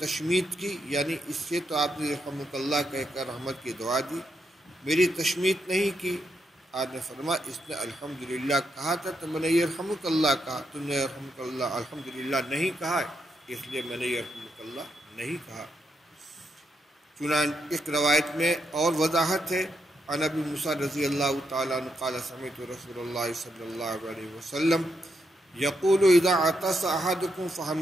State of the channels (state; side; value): normal; both; correlation 0.81